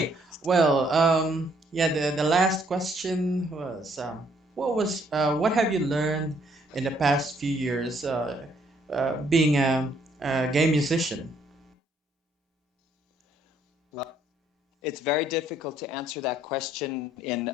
well, yeah, the last question was, what have you learned in the past few years being a game musician? Well, it's very difficult to answer that question in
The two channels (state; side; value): normal; both; correlation 0.67